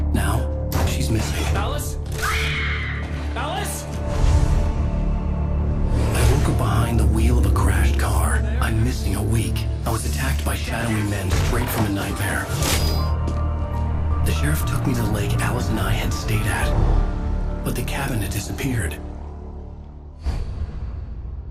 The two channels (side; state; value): both; identical; correlation 1.00